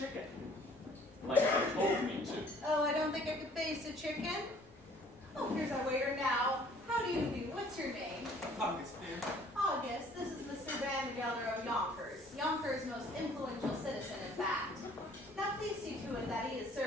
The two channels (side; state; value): both; normal; correlation 0.56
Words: Like you told me to. Oh, I don't think I could face a chicken. Oh, here's our waiter now. How do you do? What's your name? August, dear. August. This is Mr. Vandergelder of Yonkers. Yonkers' most influential citizen, in fact. Now please see to it that he is